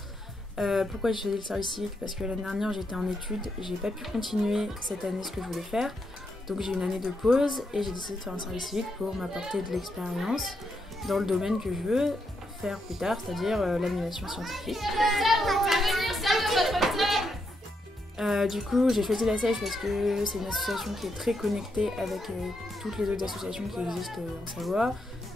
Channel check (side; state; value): both; normal; correlation 0.80